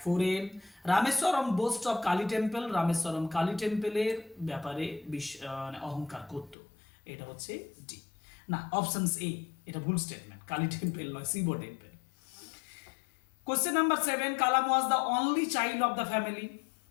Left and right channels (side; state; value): right; drops out; at 6.6 s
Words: 4 AM। Rameswaram boast of Kali temple, Rameswaram Kali টেম্পলের ব্যাপারে অহংকার করত, এটা হচ্ছে ডি, না, অপশন এ, এটা ভুল স্টেটমেন্ট, কালী টেম্পল নয়, Shiva temple. Question number 7, Kalam was the only child of the family,